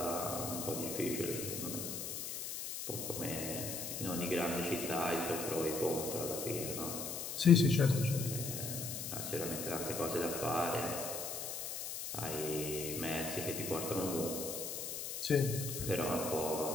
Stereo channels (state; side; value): noise; left; hiss, 5 dB below the sound